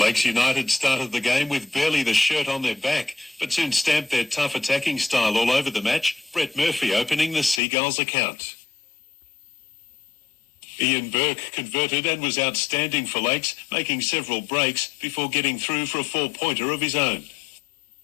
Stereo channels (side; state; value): right; drops out; at 7.6 s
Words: United started the game with barely the shirt on their back, but soon stamped their tough attacking style all over the match. Brett Murphy opening the Seagulls account. Ian Burke converted and was outstanding for Lakes, making several breaks before getting through for a 4-pointer of his own.